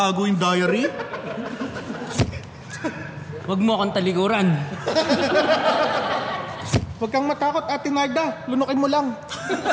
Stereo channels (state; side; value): identical; both; correlation 1.00